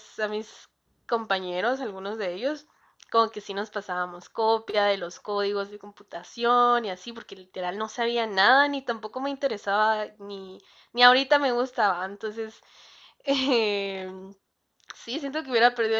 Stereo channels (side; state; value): both; identical; correlation 1.00